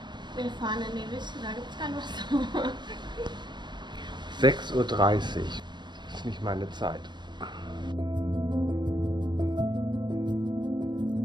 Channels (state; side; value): late; left; 0.22 ms